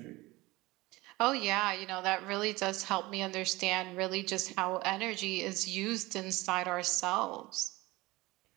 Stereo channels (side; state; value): left; quieter; 20.7 dB